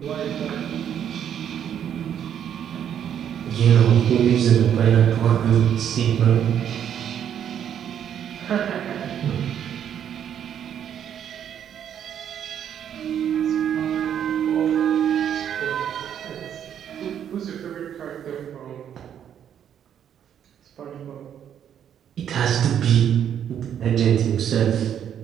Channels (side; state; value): left; quieter; 9.3 dB